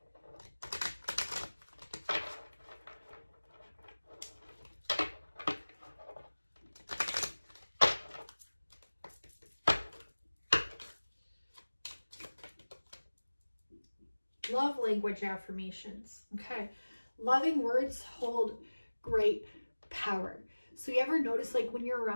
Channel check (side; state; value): both; inverted; correlation -1.00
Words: Love language affirmations. Okay, loving words hold great power. So you ever notice, like, when you're